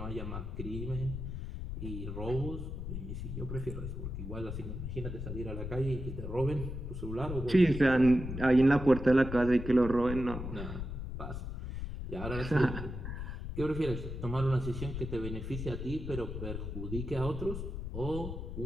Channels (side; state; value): left; noise; rumble, 6 dB below the sound